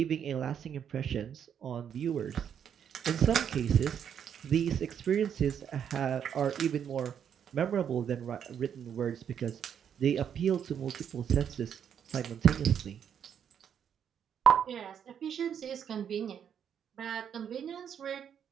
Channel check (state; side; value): quieter; left; 8.4 dB